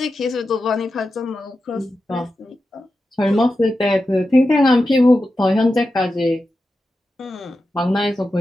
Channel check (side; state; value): both; normal; correlation 0.91